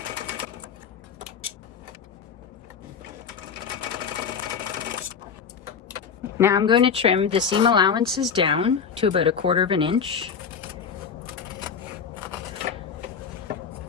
Now I'm going to trim the seam allowances down to about 1/4 inch.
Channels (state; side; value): quieter; right; 6.6 dB